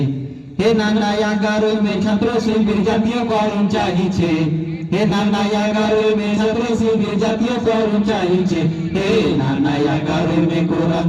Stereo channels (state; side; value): identical; both; correlation 1.00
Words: হে নানা 11ই মে ছাত্র শিবির জাতীয়করণ চাইছে হে নানা 11ই মে ছাত্র শিবির জাতীয়করণ চাইছে হে নানা 11ই মে কোরআন